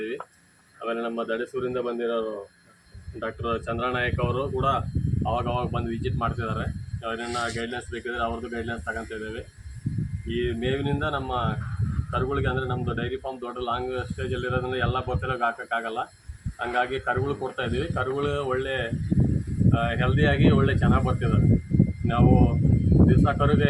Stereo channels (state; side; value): identical; both; correlation 1.00